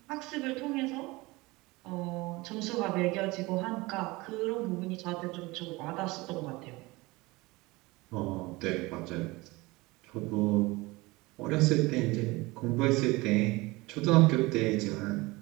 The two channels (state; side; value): quieter; left; 22.4 dB